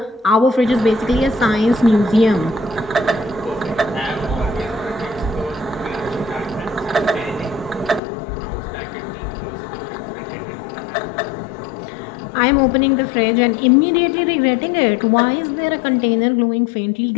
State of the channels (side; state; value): right; drops out; at 8.0 s